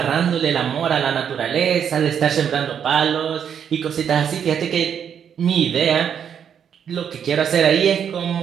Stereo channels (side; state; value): left; quieter; 8.2 dB